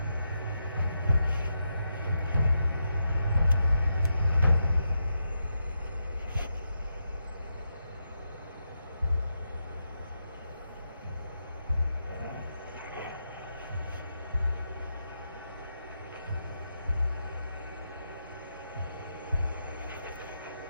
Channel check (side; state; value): both; inverted; correlation -0.84